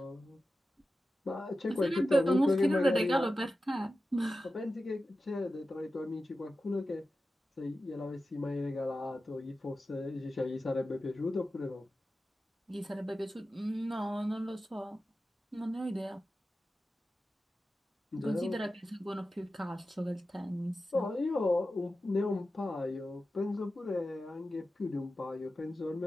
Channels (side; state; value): both; normal; correlation 0.93